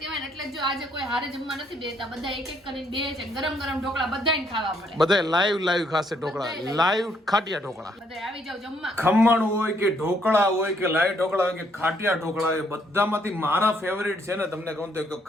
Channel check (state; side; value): normal; both; correlation 0.70